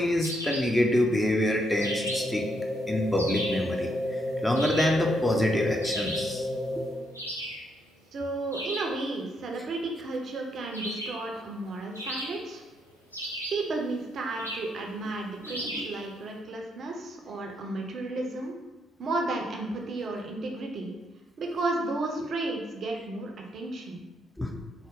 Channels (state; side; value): normal; both; correlation 0.76